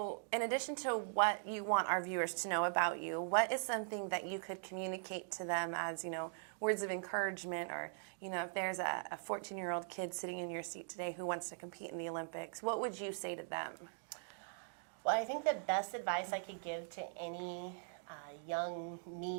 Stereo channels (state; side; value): silent; left; digital silence